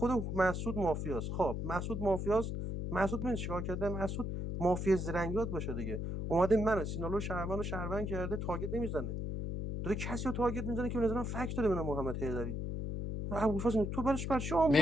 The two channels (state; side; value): noise; left; hum, 2 dB below the sound